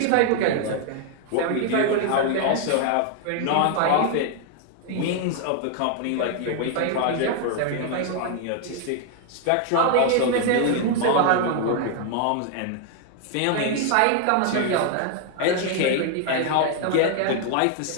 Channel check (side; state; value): both; different; correlation 0.00